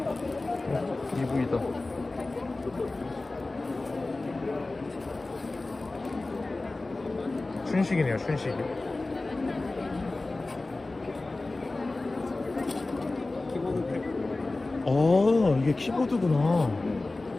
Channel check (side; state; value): right; quieter; 3.1 dB